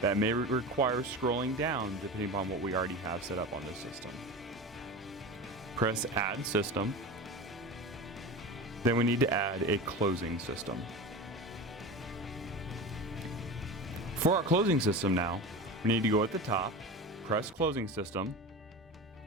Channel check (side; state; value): both; normal; correlation 0.29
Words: may require scrolling down depending upon what we already have set up on this system. Press Add System. Then we need to add a closing system. For our closing system now, we need to go at the top, press Closing System,